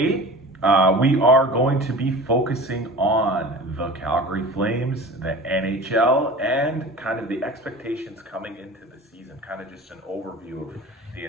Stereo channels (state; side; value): normal; both; correlation 0.37